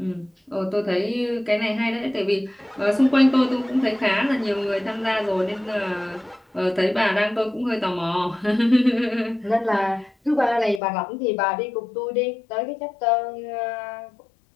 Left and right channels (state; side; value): drops out; right; at 10.8 s